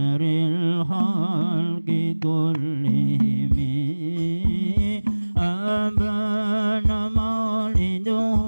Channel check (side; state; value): both; inverted; correlation -1.00